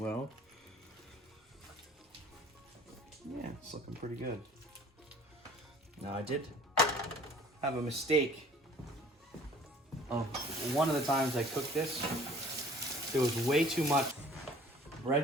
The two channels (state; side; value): normal; both; correlation 0.51